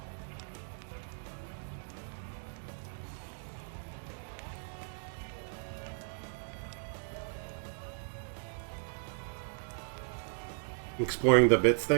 Exploring the bits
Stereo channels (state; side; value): silent; left; digital silence